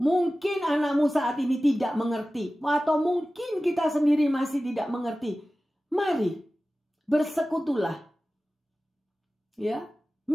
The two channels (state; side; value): normal; both; correlation 0.96